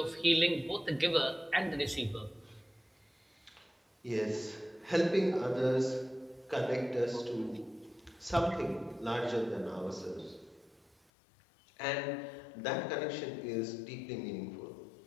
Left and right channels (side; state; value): right; drops out; at 11.0 s